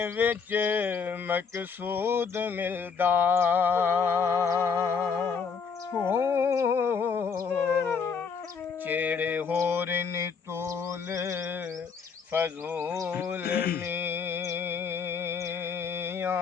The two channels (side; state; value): right; quieter; 5.8 dB